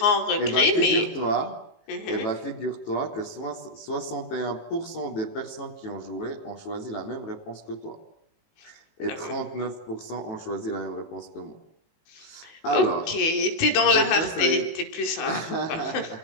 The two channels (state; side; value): late; right; 19 ms